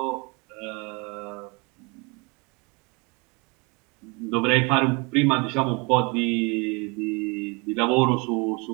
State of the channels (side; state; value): left; quieter; 29.6 dB